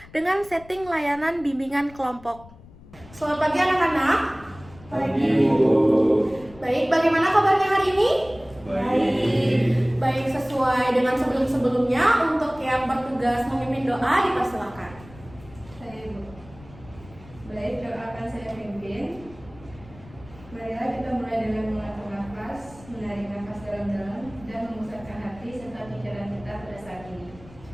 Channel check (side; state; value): left; noise; rumble, 21 dB below the sound